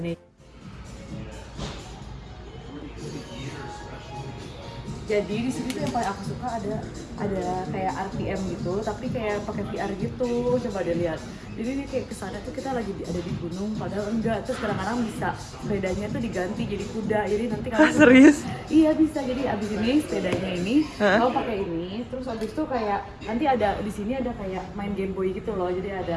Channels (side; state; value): both; identical; correlation 1.00